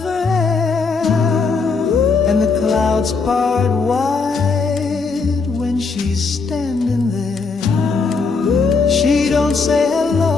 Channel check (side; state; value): right; quieter; 4.6 dB